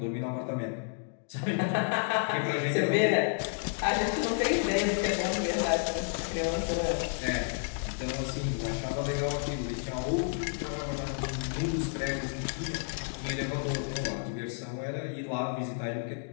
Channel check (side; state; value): right; silent; digital silence